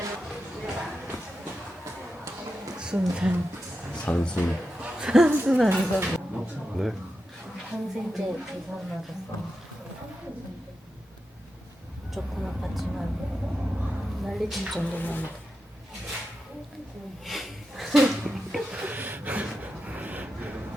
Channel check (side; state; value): both; normal; correlation 0.89